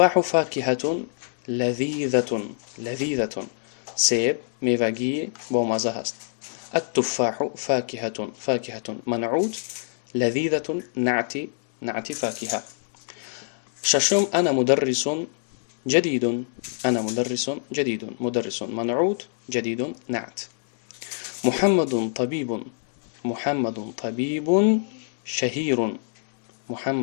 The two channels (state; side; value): silent; right; digital silence